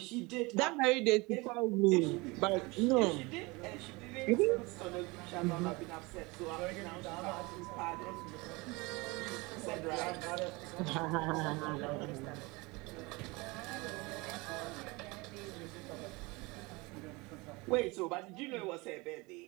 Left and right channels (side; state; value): left; quieter; 24.8 dB